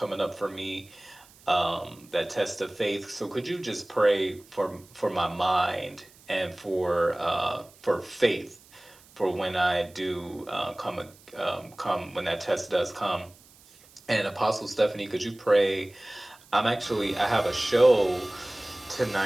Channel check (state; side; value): noise; right; hiss, 26 dB below the sound